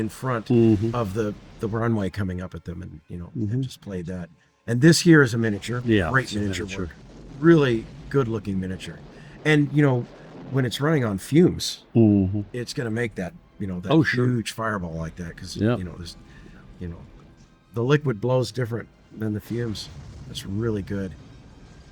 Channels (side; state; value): both; identical; correlation 1.00